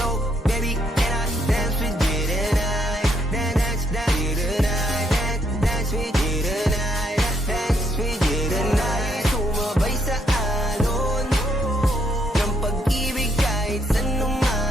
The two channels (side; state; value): both; normal; correlation 0.74